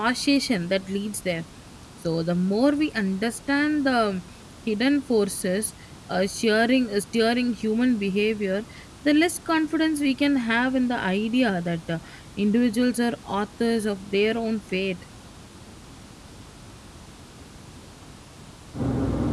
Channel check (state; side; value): identical; both; correlation 1.00